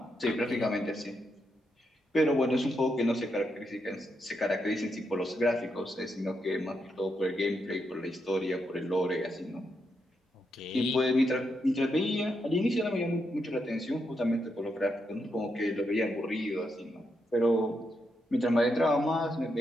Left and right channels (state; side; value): normal; both; correlation 0.82